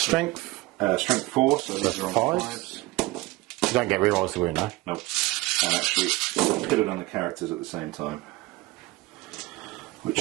Strength 4, so these are on 5s. You don't get rerolls to win, no? Nope. And actually put it on the characters at the same time,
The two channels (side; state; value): left; quieter; 20.9 dB